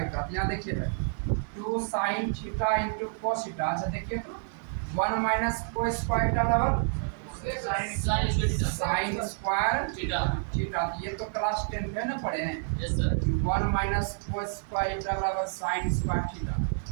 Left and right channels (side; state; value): left; silent; digital silence